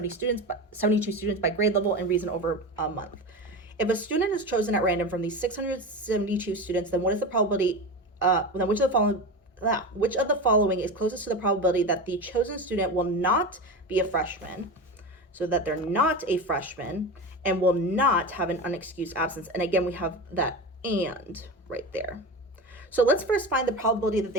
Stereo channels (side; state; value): both; normal; correlation 0.24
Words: students by grade level and reason over a month. If a student is chosen at random from these 672 students, then what is the probability, then which of the following is closest to the probability that the chosen student will not be a freshman, so that they're not a freshman, and will not have an unexcused absence? And again, we have that "and" right there. So let's first find the probability that